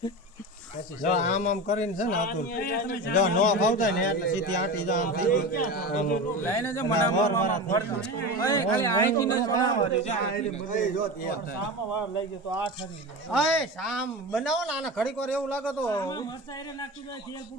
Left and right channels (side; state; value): both; normal; correlation 0.27